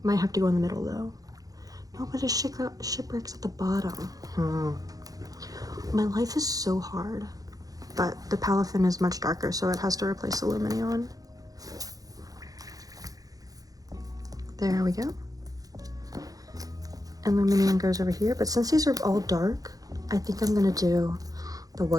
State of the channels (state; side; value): late; left; 0.17 ms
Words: Might have to go in the middle though. No, but a Shipwreck's at the bottom. My life is so hard, but the Palafin is much darker, so it has to replace the Luminion. There we go. And Luminion goes over here, but since these are all dark, I think I'm gonna do the